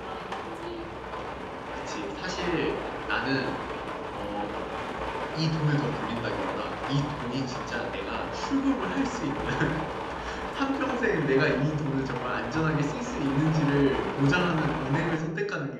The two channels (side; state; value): both; identical; correlation 1.00